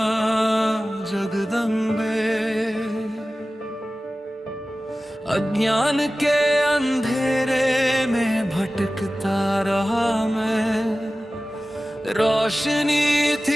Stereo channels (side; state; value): both; normal; correlation 0.96